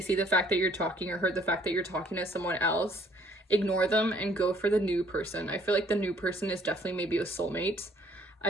see the fact that you're talking, or heard the fact that you're talking to someone else, ignore them and go for the new person. I feel like the new person is definitely maybe a soulmate.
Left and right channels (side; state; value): both; normal; correlation 0.62